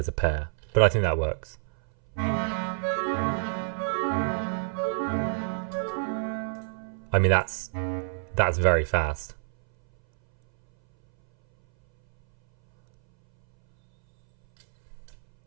a pair, but I think that works. I mean, that's very fast.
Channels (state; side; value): silent; left; 60 dB below the other